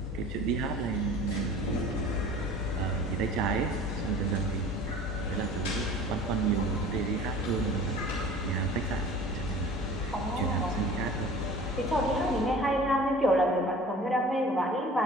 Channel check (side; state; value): both; normal; correlation 0.43